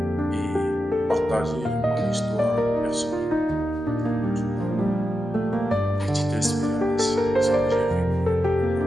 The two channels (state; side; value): normal; both; correlation 0.89